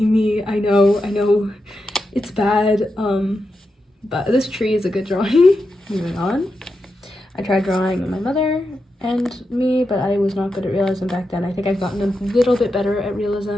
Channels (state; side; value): normal; both; correlation 0.88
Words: me. I know it's bad, but this tree is a good drawing. Moving on. I tried drawing my mother and me, but I was not good at realism back then. I think I've gotten a little bit better at